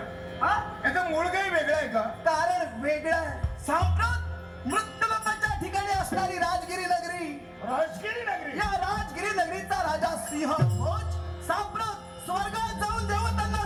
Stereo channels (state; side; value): identical; both; correlation 1.00